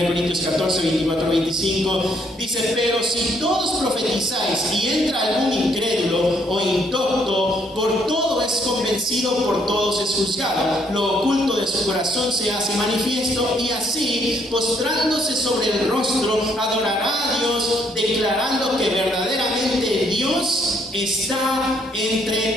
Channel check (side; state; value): both; normal; correlation 0.68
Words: Corintios 14, 24, 25, dice, pero si todos profetizáis y entra algún incrédulo o indocto, por todo es convencido, por todos es juzgado, lo oculto de su corazón se hace manifiesto, y así, postrándose sobre el rostro, adorará a Dios, declarando que verdaderamente Dios está